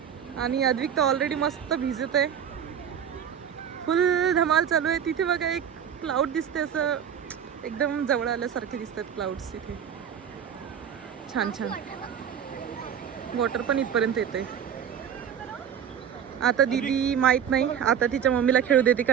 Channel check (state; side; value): quieter; left; 8.5 dB